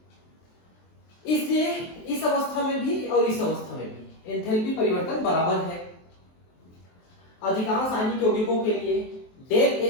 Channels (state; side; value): late; right; 23 ms